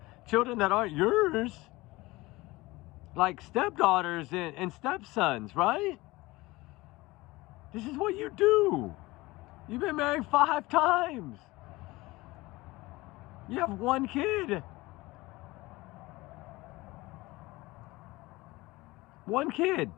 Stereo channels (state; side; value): quieter; right; 20.7 dB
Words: children that aren't yours, like stepdaughters and stepsons, right? This is what you do. You've been married 5 times. You have 1 kid. 1 kid.